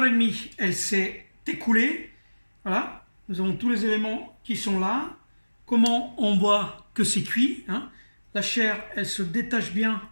elle s'est écoulée. Voilà, nous avons tous les éléments qui sont là. Comment on voit que c'est cuit hein. La chair, elle se détache bien.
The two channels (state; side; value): inverted; both; correlation -1.00